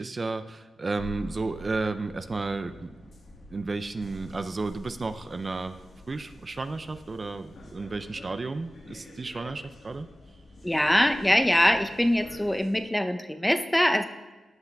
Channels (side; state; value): both; normal; correlation 0.97